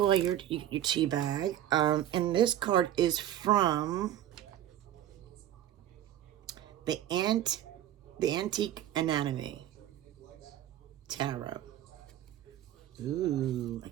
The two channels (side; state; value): left; quieter; 11.9 dB